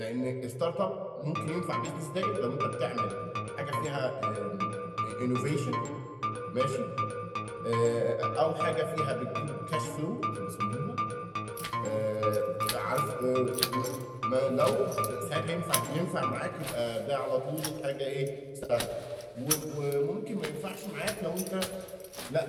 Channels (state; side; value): identical; both; correlation 1.00